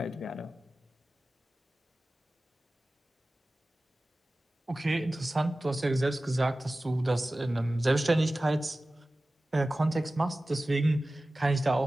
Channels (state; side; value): normal; both; correlation 0.96